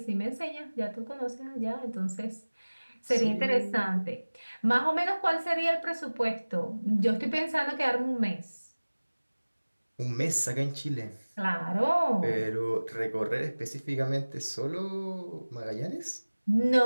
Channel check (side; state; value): both; inverted; correlation -1.00